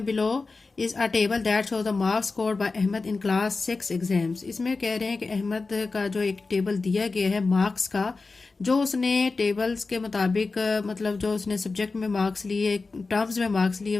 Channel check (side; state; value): right; quieter; 3.9 dB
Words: below is a table that show the marks scored by Ahmad in class 6 exams. इसमें कह रहे हैं कि अहमद का जो एक टेबल दिया गया है मार्क्स का, जो उसने टेबल्स के मुताबिक मतलब जो उसने सब्जेक्ट में मार्क्स लिए, टर्म्स में मार्क्स लिए,